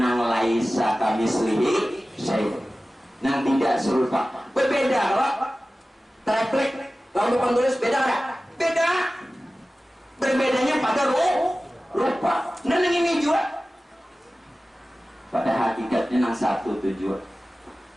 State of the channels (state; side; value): normal; both; correlation 0.96